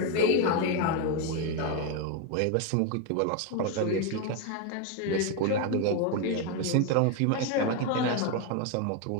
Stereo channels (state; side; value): different; both; correlation 0.02